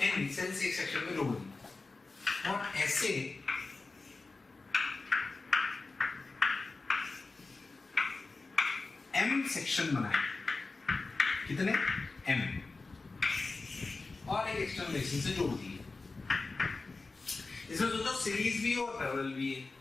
एन सेल से एक सेक्शन में जोड़ दिया और ऐसे एम सेक्शन बनाए, कितने एम, और एक एक्सटर्नल से जोड़ दिए। इसमें सोचो सीरीज भी और पैरेलल भी है।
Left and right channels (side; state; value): right; quieter; 3.7 dB